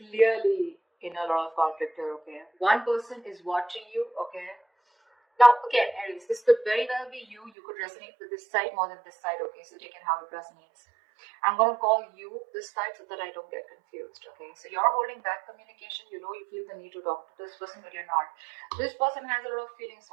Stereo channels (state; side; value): drops out; left; at 7.5 s